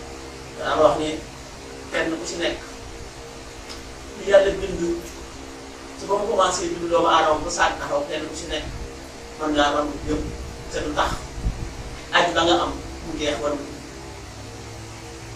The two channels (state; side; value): identical; both; correlation 1.00